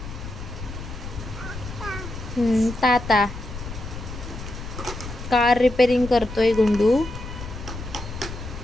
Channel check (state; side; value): noise; left; rumble, 10 dB below the sound